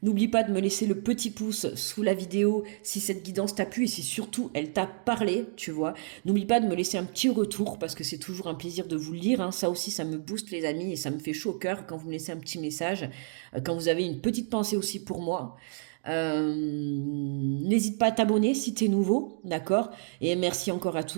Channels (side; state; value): left; silent; digital silence